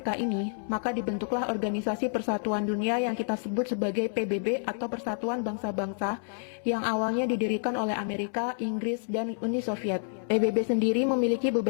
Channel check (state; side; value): silent; right; 59 dB below the other